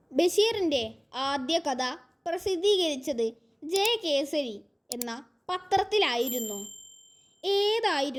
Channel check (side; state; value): both; identical; correlation 1.00